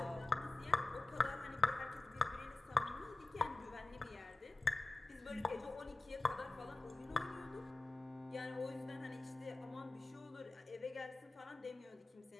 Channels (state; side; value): quieter; right; 3.2 dB